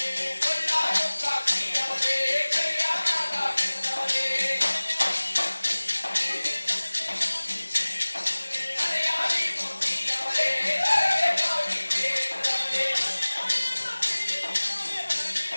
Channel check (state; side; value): inverted; both; correlation -1.00